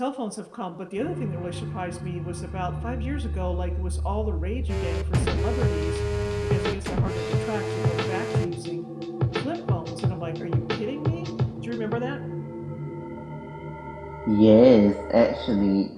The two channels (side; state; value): both; identical; correlation 1.00